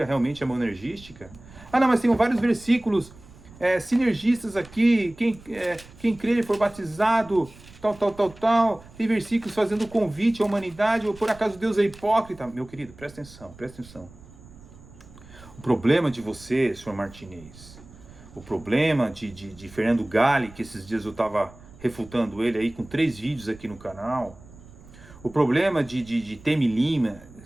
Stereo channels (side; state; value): right; noise; rumble, 21 dB below the sound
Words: realmente é monergística. Ah, não, mas tem vários versículos sinergistas aqui, quem crer e for batizado, tal. Tem versículos fazendo convite à humanidade, ou por acaso Deus é hipócrita. Meu querido, presta atenção. O problema de você, senhor Martinez, o problema de Fernando Galli, que esses dias eu estava refutando ele aí com 3 vídeos aqui no canal, o problema de Temi Lima,